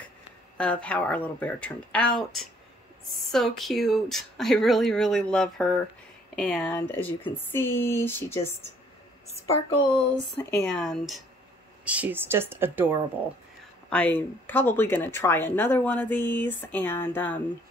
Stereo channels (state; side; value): normal; both; correlation 0.62